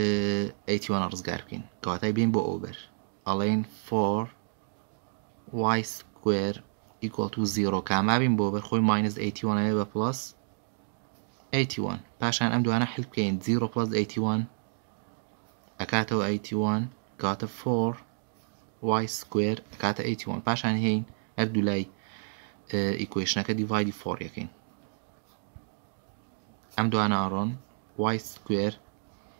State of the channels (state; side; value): silent; left; digital silence